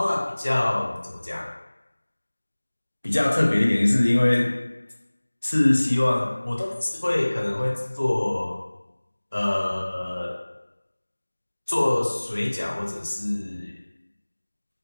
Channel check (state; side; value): inverted; both; correlation -1.00